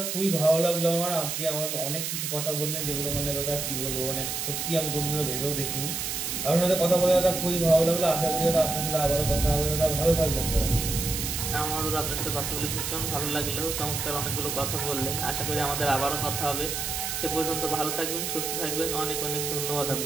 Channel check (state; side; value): noise; right; hiss, 3 dB below the sound